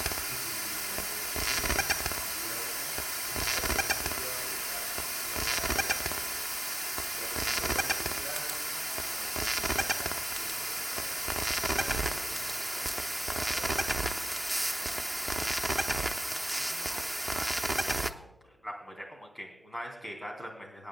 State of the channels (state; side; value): normal; both; correlation 0.95